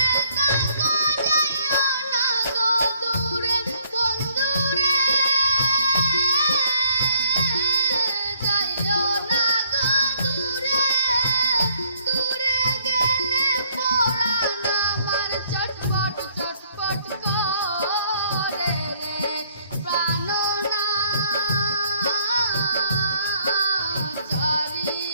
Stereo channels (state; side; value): inverted; both; correlation -0.65